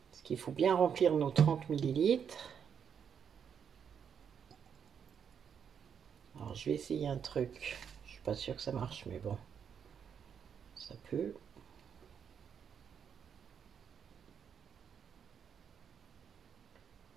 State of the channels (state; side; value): quieter; left; 7.6 dB